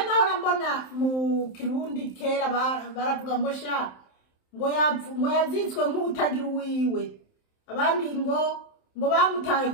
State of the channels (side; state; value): right; late; 27 ms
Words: mbona mu Kirundi kera baravuga ngo sha ngo yazitswe nk'utagira uwiwe, abandi ngo bamutaye